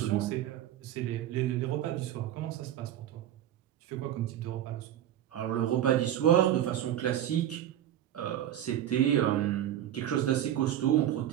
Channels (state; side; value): quieter; left; 11.6 dB